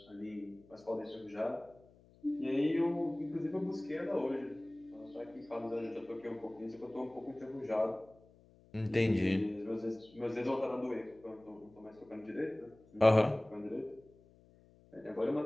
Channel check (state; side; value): noise; left; hum, 26 dB below the sound